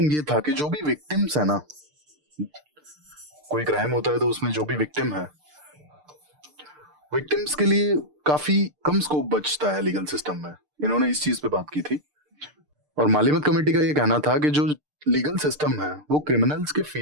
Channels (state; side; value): late; left; 6.7 ms